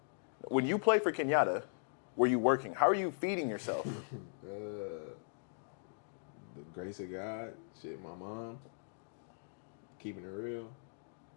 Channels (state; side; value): silent; right; digital silence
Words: When you played for Kenyatta, were you working? How are you feeding yourself? The grace of God, shit, my mom, keeping it real.